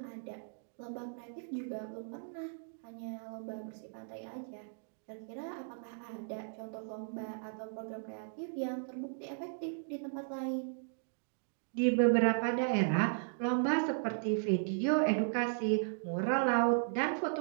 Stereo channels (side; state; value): left; silent; digital silence